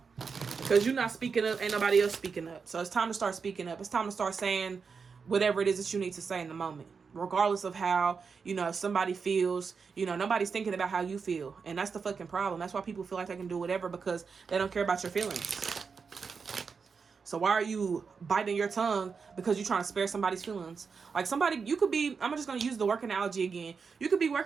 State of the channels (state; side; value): quieter; left; 5.5 dB